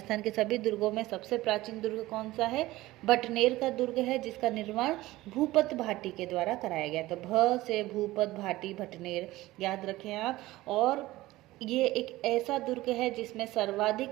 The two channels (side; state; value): left; quieter; 17.8 dB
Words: के सभी दुर्गों में सबसे प्राचीन दुर्ग कौन सा है? भटनेर का दुर्ग है, जिसका निर्माण भूपत भाटी के द्वारा कराया गया। तो भ से भूपत भाटी भटनेर याद रखें आप। और ये एक ऐसा दुर्ग है जिसमें